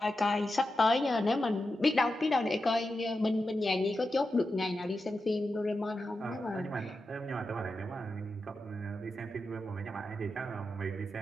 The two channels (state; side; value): normal; both; correlation 0.90